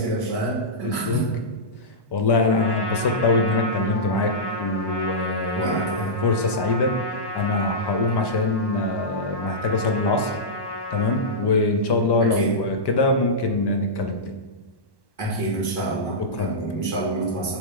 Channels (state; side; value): late; right; 1.1 ms